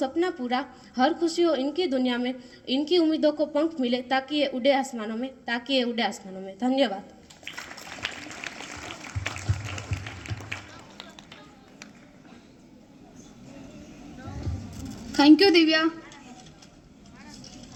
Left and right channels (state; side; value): identical; both; correlation 1.00